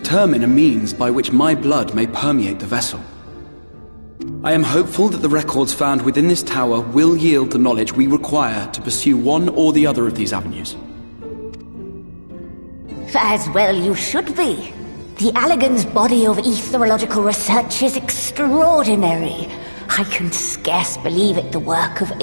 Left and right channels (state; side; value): inverted; both; correlation -1.00